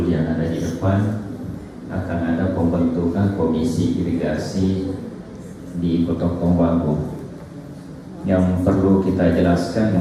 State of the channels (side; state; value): both; identical; correlation 1.00